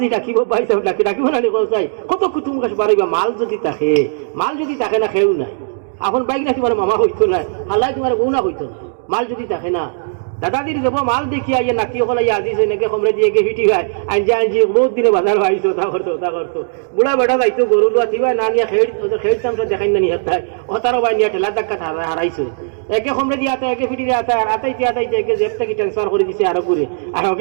ডাকিব, ভাই সাহেব ডাকিব না চাই কত কুটুম কাছে বাড়িবা। মাল যদি থাকে না খেউ নাই। এখন বাইক না তোমার মামা হইতো না, হাল্লাই তোমার বউ না হইতো না। মাল যদি থাকে না দাদাদির যাব মাল দেখি আইয়া নাকি ওখানে আজিছে নাকি কমরে দিয়ে ফিটি খায় আনজি বহুত দিনে বাজার ভাইছো তা করতো বুড়া বেটা যাইতো গরু লোয়া থিবা না নিয়ে খেড়তাম দেখাই না নিয়ে ওতারও ভাই নিয়ে ঠেলা ধাক্কা হারাইছো। একে কমরে দিয়ে আতা একে ফিটি দিয়ে আতাইতে একে জেব থেকে ট্রান্সফার করে দিছে আরো করে আর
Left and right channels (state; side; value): silent; left; digital silence